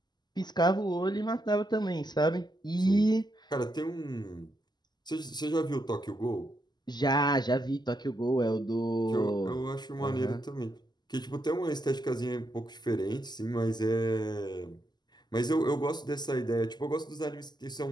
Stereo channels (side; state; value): right; late; 0.21 ms